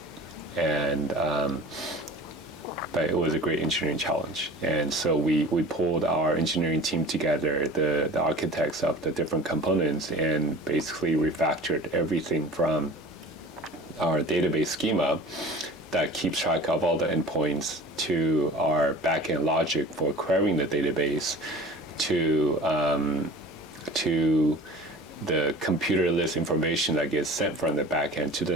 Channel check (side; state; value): both; normal; correlation 0.41